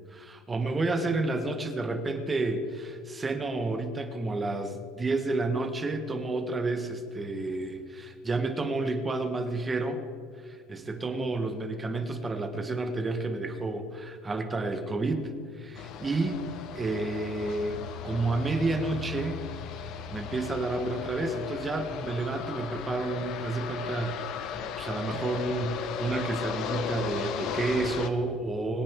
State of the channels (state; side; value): normal; both; correlation 0.72